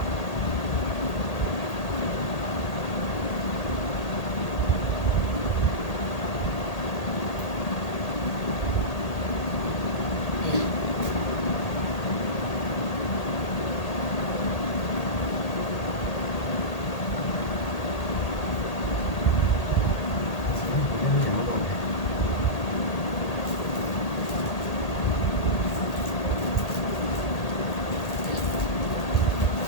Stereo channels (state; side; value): late; right; 1.8 ms